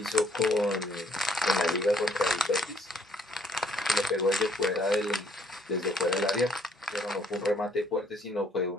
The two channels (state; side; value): normal; both; correlation 0.66